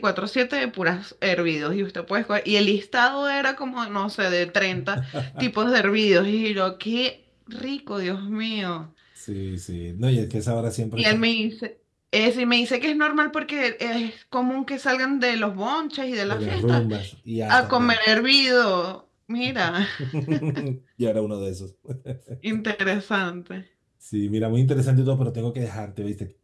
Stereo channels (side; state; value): both; identical; correlation 1.00